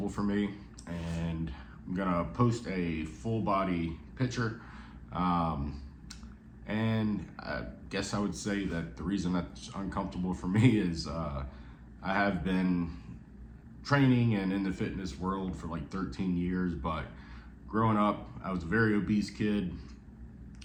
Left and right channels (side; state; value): both; identical; correlation 1.00